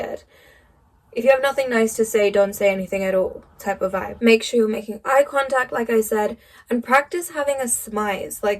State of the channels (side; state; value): both; identical; correlation 1.00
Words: If you have nothing nice to say, don't say anything at all type of vibe. Make sure you're making eye contact, like I said, and practice having a smize.